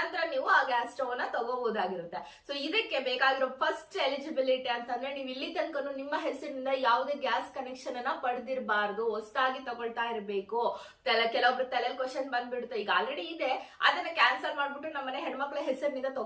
ನೀವು ಆ ಗ್ಯಾಸ್ ಸ್ಟವ್ ನ ತಗೋಬಹುದಾಗಿರುತ್ತೆ. ಸೊ ಇದಕ್ಕೆ ಬೇಕಾಗಿರೋ ಫಸ್ಟ್ ಎಲಿಜಿಬಿಲಿಟಿ ಅಂತಂದ್ರೆ ನೀವು ಇಲ್ಲಿ ತನಕ ನಿಮ್ಮ ಹೆಸರಿನಿಂದ ಯಾವುದೇ ಗ್ಯಾಸ್ ಕನೆಕ್ಷನ್ ಅನ್ನ ಪಡೆದಿರಬಾರ್ದು. ಹೊಸದಾಗಿ ತಗೊಳ್ತಾ ಇರಬೇಕು. ಕೆಲವೊಬ್ರು ತಲೆ ಬಂದ್ಬಿಡುತ್ತೆ. ಈಗ ಆಲ್ರೆಡಿ ಇದೆ, ಅದನ್ನ ಕ್ಯಾನ್ಸಲ್ ಮಾಡ್ಬಿಟ್ಟು ನಮ್ಮನೆ ಹೆಣ್ಮಕ್ಳ ಹೆಸರಿನಿಂದ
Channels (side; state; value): both; identical; correlation 1.00